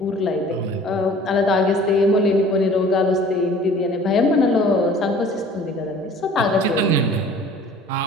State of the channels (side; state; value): both; normal; correlation 0.49